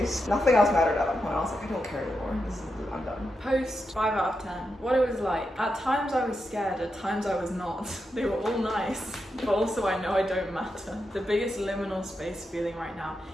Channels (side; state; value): both; normal; correlation 0.86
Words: Nothing else mattered at that point. I was like, I don't care anymore. I'm done. Post 5 out of 10. What it was like. At times I was scared, at times I was not. They were all nice, but also I know I don't matter. The biggest liminal space feeling right now,